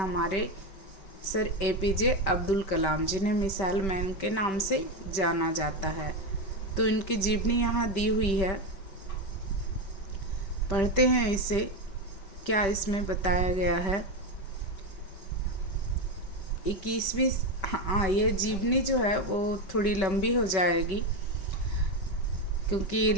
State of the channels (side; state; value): right; late; 5.2 ms